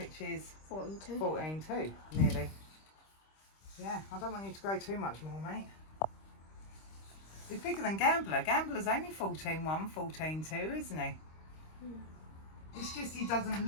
is 14.2. 14.2, nearly. Yeah, I don't want you to grow too much more, mate. He's bigger than Gambler. Gambler's only 14.1, 14.2, isn't he? It's just he doesn't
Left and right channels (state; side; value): late; right; 26 ms